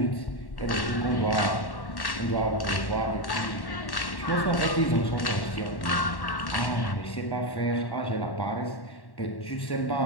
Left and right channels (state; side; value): late; right; 1.1 ms